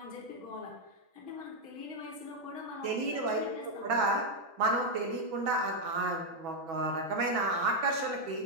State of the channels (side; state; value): left; late; 6.2 ms